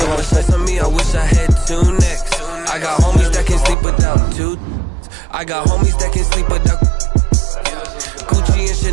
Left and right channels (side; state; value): left; drops out; at 3.8 s